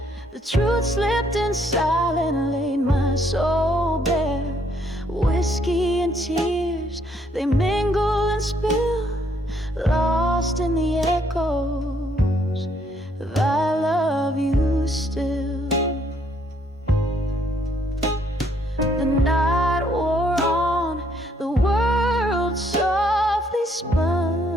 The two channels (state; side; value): normal; both; correlation 0.68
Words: the truth slipped and silent laid my soul bare. Whiskey and tears, they mingle and spill, lost in the echoes of I love you still. The night wore on, the world softly